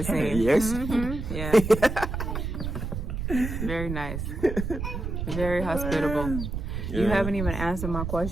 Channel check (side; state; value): right; noise; rumble, 4 dB below the sound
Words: seems. Yes. Yeah. Very nice. Very hospitable. You haven't even answered my